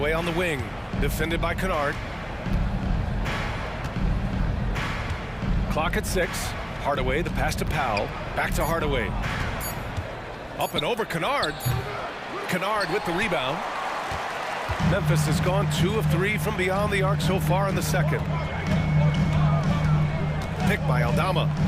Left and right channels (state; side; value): identical; both; correlation 1.00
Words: on the wing, defended by Kennard. Clock at 6. Hardaway, the pass to Powell. Back to Hardaway. Up and over Kennard. Kennard with the rebound. Memphis has gone 2 of 3 from beyond the arc so far in the second. Picked by Aldama.